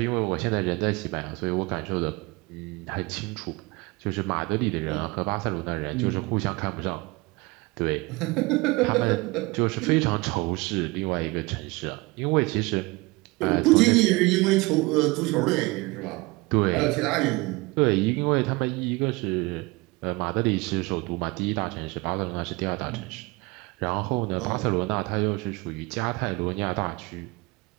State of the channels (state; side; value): quieter; left; 24.0 dB